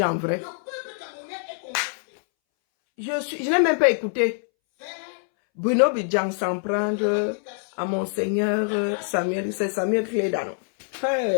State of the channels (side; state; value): right; silent; 62 dB below the other